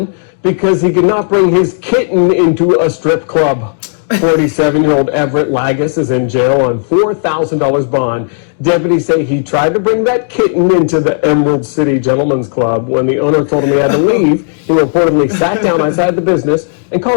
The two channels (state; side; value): silent; right; digital silence